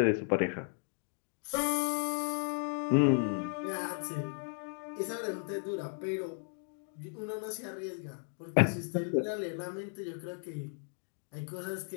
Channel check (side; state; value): right; silent; 54 dB below the other